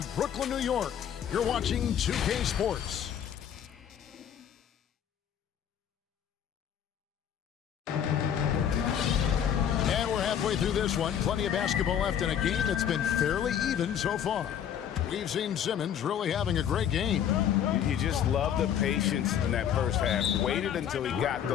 Brooklyn, New York, you're watching 2K Sports. And we're halfway through this one. Plenty of basketball left in a game that's been fairly even so far. We've seen Simmons really having a great game. You just love the patience in that first half. Waited until he got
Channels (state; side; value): quieter; right; 9.2 dB